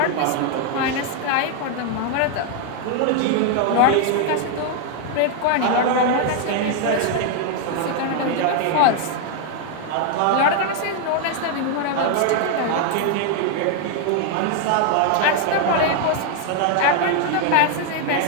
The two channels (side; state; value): both; different; correlation 0.00